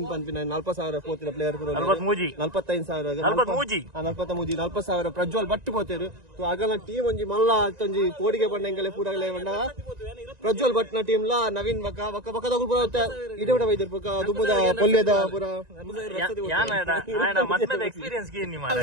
ಪಂಪಿನ 40,000 ಪೋತಿನ ಪ್ಲೇಯರ್ 45,000 40,000 ಪ್ರಜ್ವಲ್ ಬಟ್ಟು ಪೋತೇರು ಆಗಲ ಟೀಮ್ ಒಂಜಿ ಮಲ್ಲ ಒಂಜಿ ಕೋಡಿಗೆ ಬಂಡ ಪೂರಗಲೇ ಬಂಡ ಪ್ರಜ್ವಲ್ ಭಟ್ನ ಟೀಮ್ ಲ ನವೀನ್ ಬಕ್ಕ ಪೂರ ಇದೇ ಬಿಡ ವೈದ್ಯರು ಪಕ್ಕ ದುಬ್ಬದ ಪೊಲ್ಯದ ಪೂರ ಎಕ್ಸ್ಪೀರಿಯನ್ಸ್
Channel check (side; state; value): left; late; 1.9 ms